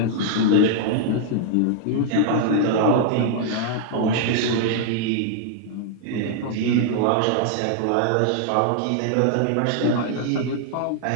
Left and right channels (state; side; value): different; both; correlation -0.01